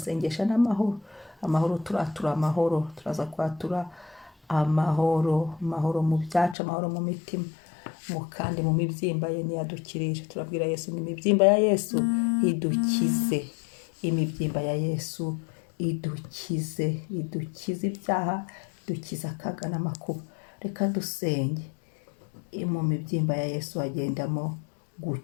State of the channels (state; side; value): drops out; right; at 6.6 s